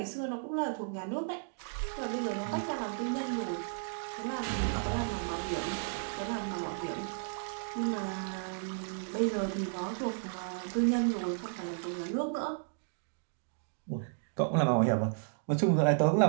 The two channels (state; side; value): silent; left; digital silence